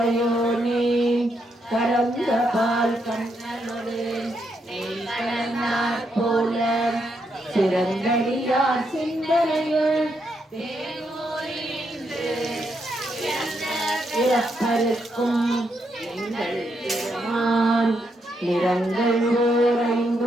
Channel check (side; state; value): both; normal; correlation 0.79